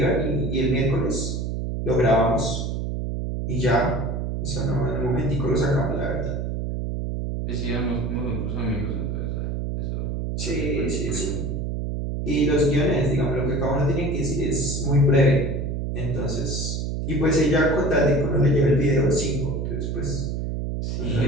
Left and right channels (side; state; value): right; noise; hum, 2 dB below the sound